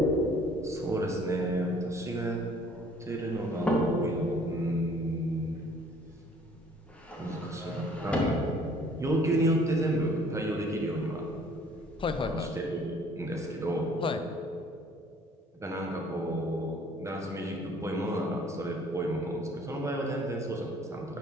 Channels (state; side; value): normal; both; correlation 0.56